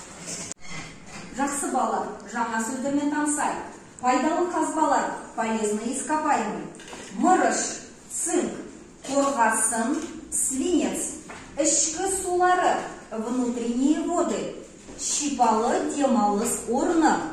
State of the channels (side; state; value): both; identical; correlation 1.00